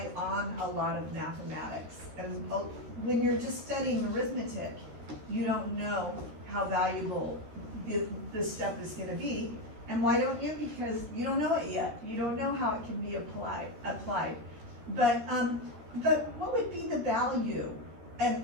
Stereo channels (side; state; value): left; late; 13 ms